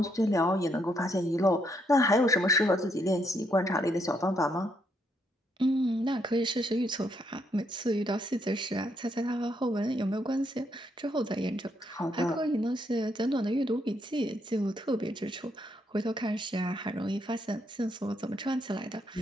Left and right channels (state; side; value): normal; both; correlation 0.75